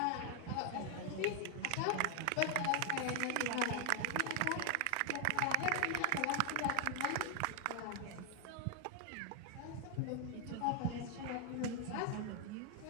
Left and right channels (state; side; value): different; both; correlation 0.00